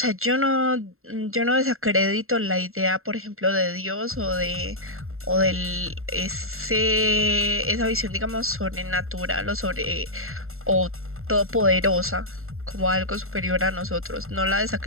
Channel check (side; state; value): left; late; 0.62 ms